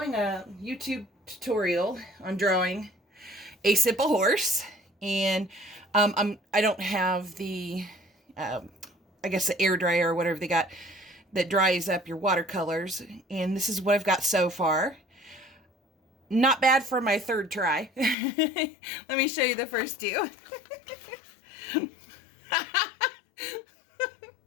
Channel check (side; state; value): right; drops out; at 18.2 s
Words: a YouTube tutorial on drawing a simple horse, and I don't have the, I guess the air dryer or whatever they got that dries up your watercolors. And this is what I've got so far. Not bad for my third try. Let me show you the first two.